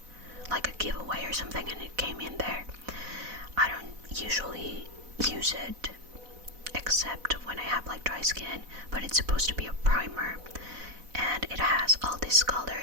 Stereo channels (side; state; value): left; late; 4.0 ms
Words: like a giveaway or something, and it came in there. I don't usually use it except when I have like dry skin, but it's supposed to be a primer, and it has all these